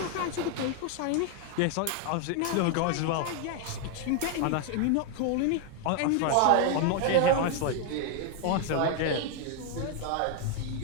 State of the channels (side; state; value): both; different; correlation 0.00